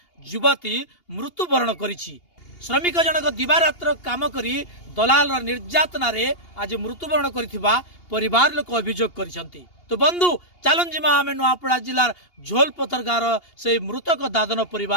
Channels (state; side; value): late; right; 2.8 ms